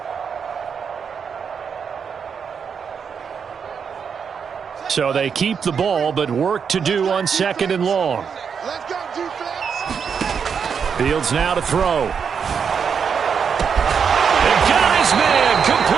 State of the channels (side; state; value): left; quieter; 6.6 dB